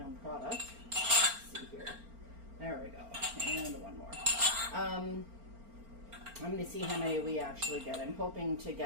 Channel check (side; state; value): left; late; 4.4 ms